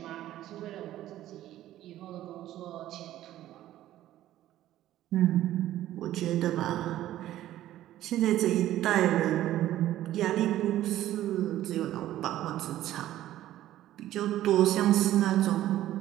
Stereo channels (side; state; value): left; quieter; 13.6 dB